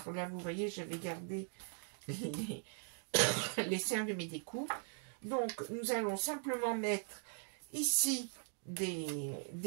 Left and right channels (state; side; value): silent; left; 51 dB below the other